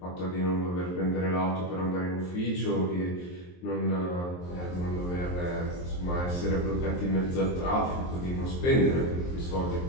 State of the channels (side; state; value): right; late; 23 ms